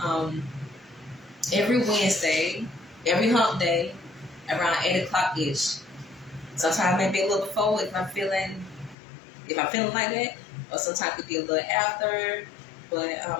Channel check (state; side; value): drops out; right; at 9.0 s